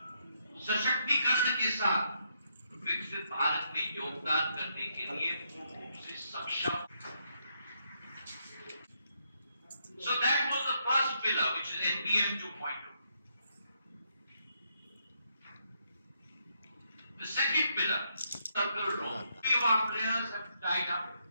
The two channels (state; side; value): inverted; both; correlation -0.77